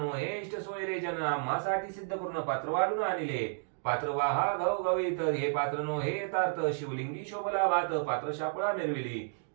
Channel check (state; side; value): silent; left; digital silence